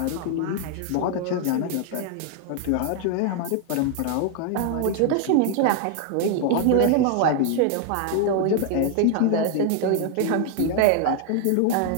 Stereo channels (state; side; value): different; both; correlation 0.00